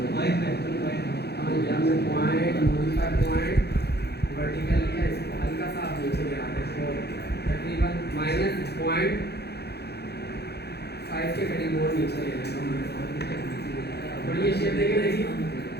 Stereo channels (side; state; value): right; late; 0.48 ms